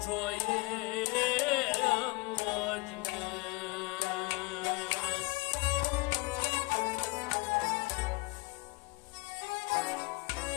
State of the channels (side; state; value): right; quieter; 24.7 dB